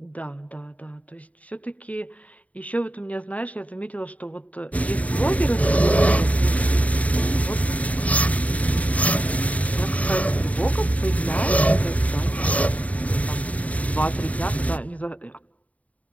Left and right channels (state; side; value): late; right; 0.069 ms